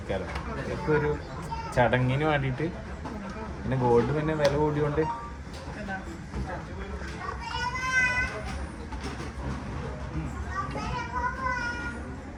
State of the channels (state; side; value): identical; both; correlation 1.00